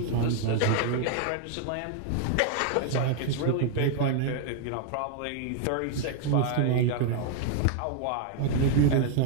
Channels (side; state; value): both; different; correlation 0.00